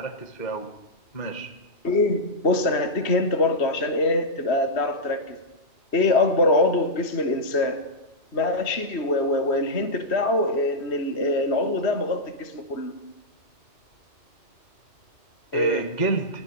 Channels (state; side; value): late; right; 3.1 ms